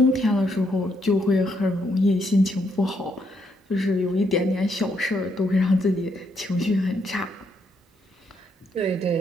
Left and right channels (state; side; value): normal; both; correlation 0.75